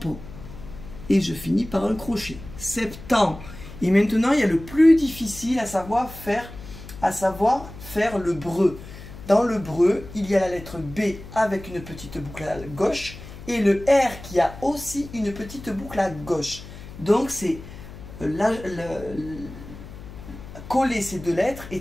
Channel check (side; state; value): left; noise; hum, 15 dB below the sound